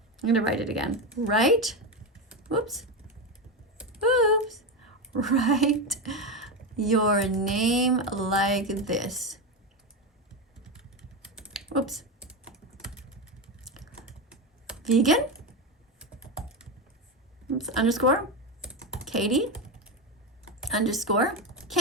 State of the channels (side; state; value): both; normal; correlation 0.14